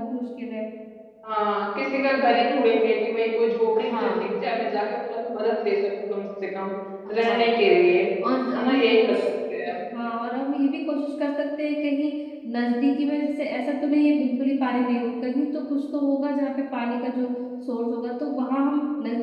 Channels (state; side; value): identical; both; correlation 1.00